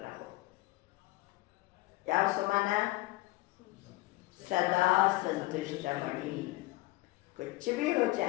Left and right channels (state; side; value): quieter; right; 20.3 dB